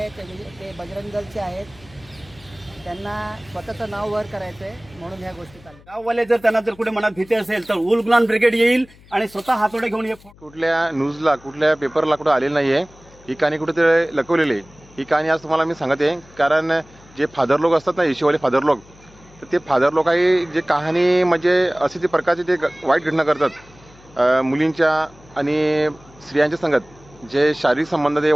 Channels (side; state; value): left; noise; hum, 25 dB below the sound